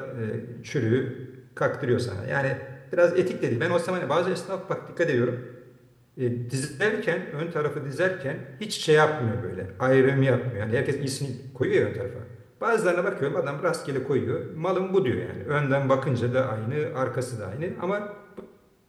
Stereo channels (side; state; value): both; identical; correlation 1.00